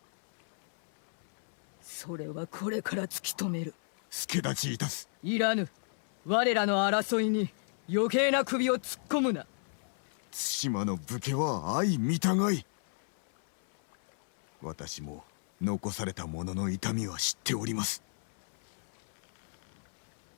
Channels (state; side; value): silent; right; 56 dB below the other